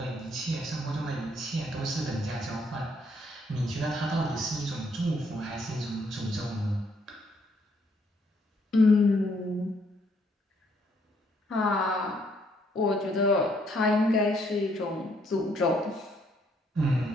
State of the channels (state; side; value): normal; both; correlation 0.69